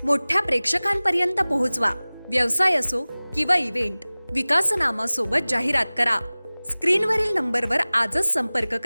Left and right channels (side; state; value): both; inverted; correlation -0.99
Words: मोठ्या प्रेक्षकांपर्यंत पोहोचवा. व्यवसाय असो किंवा इव्हेंट, विकासनामा सोबत जाहिरात करा. स्क्रीनवरील नंबरवर आजच संपर्क